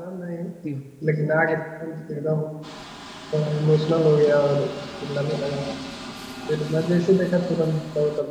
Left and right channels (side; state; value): both; identical; correlation 1.00